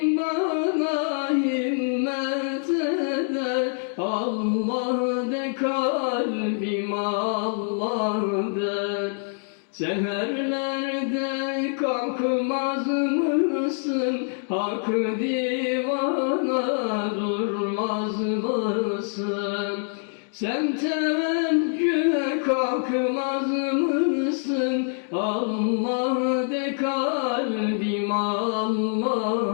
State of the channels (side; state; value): right; silent; 62 dB below the other